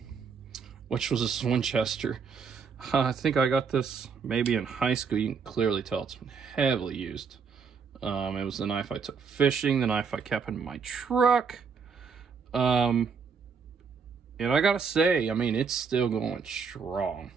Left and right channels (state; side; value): quieter; left; 5.7 dB